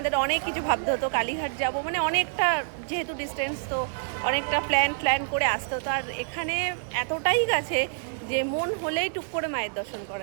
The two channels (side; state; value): left; silent; digital silence